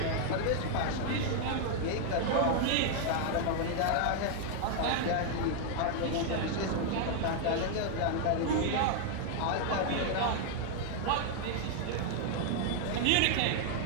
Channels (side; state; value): both; different; correlation 0.00